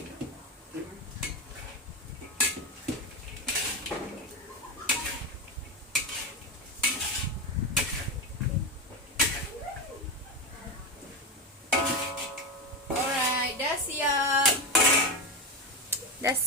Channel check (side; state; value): both; normal; correlation 0.15